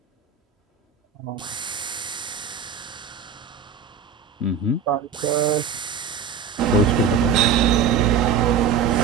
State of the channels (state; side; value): quieter; left; 6.7 dB